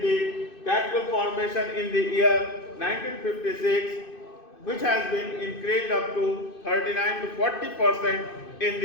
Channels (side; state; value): right; late; 2.5 ms